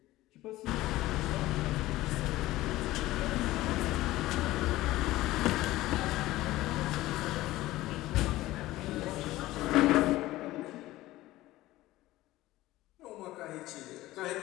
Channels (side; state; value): right; quieter; 16.9 dB